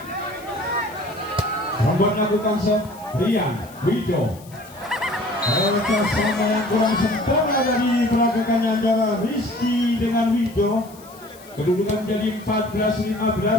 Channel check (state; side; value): noise; left; hiss, 23 dB below the sound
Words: Membuat lakukan set Rian Wido. Mereka sama yang kurang sempurna dari peragakannya antara Rizky dengan Wido. Kedudukan menjadi